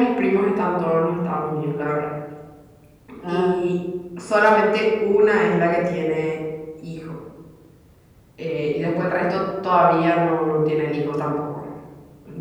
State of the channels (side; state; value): both; identical; correlation 1.00